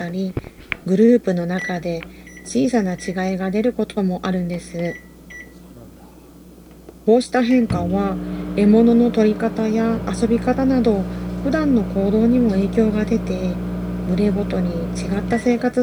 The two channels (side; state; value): both; identical; correlation 1.00